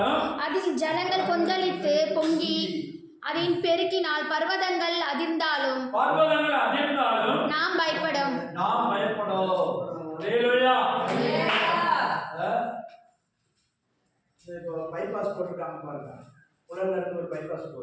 அதில் ஜலங்கள் கொந்தளித்து பொங்கி அதன் பெருக்கினால் பர்வதங்கள் அதிர்ந்தாலும் நாம் பயப்படும். அல்லேலூயா. இப்போ பைபாஸ் போட்டிருக்காங்க பாருங்க, உலகில் இருந்து ஒரு பைபாஸ்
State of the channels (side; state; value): both; identical; correlation 1.00